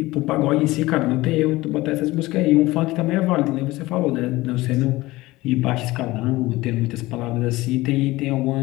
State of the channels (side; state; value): right; quieter; 19.3 dB